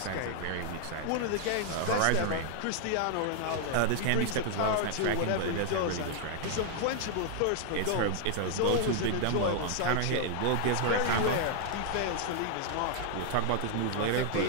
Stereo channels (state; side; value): different; both; correlation 0.00